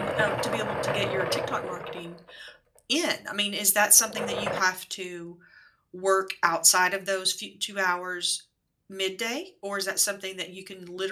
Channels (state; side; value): identical; both; correlation 1.00